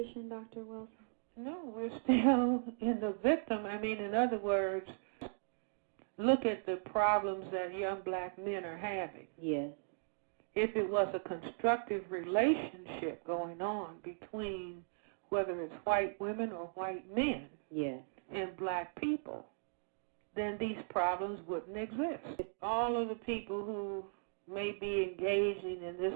Dr. Welsing? No, we're still in the victim. In other words, look at the problems that young black men are having. Yes. If it was a constructive relationship going on between whether it's white women or white men, yes, and black people, then these problems wouldn't exist. All of the people who may be engaging in this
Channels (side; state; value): left; silent; digital silence